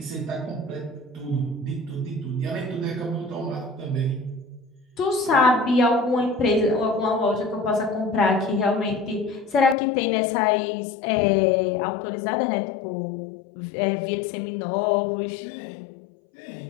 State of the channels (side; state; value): right; drops out; at 9.8 s